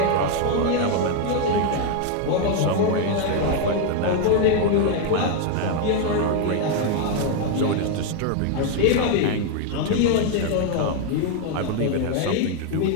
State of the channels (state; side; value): different; both; correlation 0.01